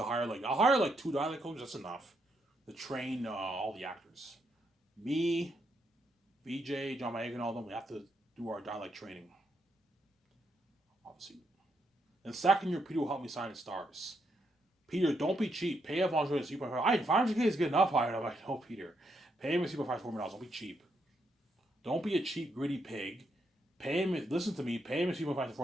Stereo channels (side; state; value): both; normal; correlation 0.78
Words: hire I'll hire like 2 dialect coaches. That's enough to train all the actors. Me, VJ, John Mayer, and all them. We have to do our dialect training, obviously. And second year, Peter will help me sign the stars. Peter, don't be cheap. Pay Avon Jordan 3.5. 500K is good enough. I'm like, no, Peter. Pay him a 3.5 $4 million. Don't be cheap. Don't be a cheap, gritty pig. Pay him. Listen to me. Pay him a 3.5 to